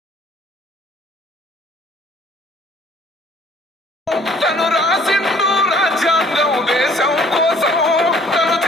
తను రాసిండు రాజ్యాంగం దేశం కోసం, తను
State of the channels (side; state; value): both; normal; correlation 0.57